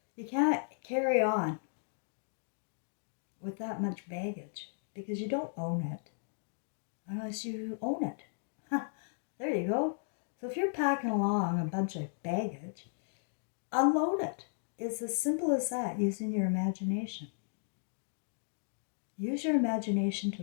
You can't carry on with that much baggage because you don't own it unless you own it. There you go. So if you're packing along a bunch of baggage, unload it. It's as simple as that, using your imagination. Use your imagination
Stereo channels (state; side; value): silent; right; digital silence